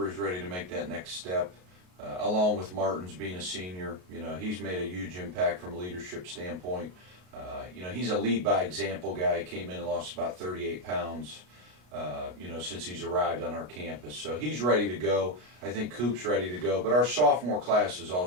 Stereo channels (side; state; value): left; late; 33 ms